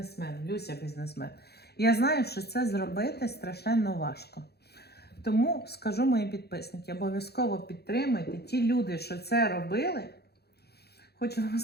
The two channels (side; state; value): right; late; 0.47 ms